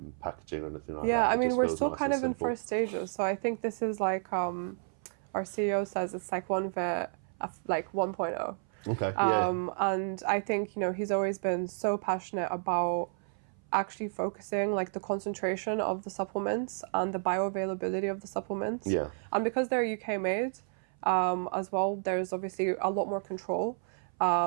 packaging or anything like that. Yeah, I mean, we're still kind of in first stages. So I think this is like, our CEO says it's like OneVit, like 1.0. Okay. And I think, he's always been so passionate about actually focusing like the concentration of the supplements and the bioavailability of the supplements. Yeah. And because they're UK made, as well, there's obviously a lot more control.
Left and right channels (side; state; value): left; silent; 56 dB below the other